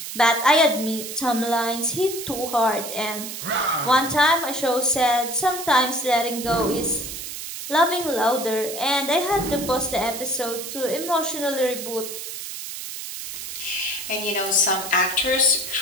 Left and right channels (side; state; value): right; noise; hiss, 8 dB below the sound